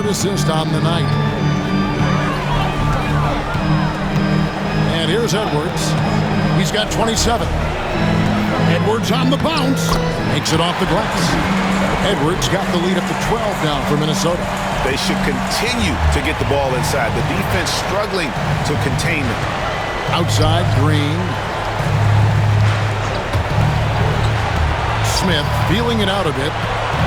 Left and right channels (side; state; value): both; identical; correlation 1.00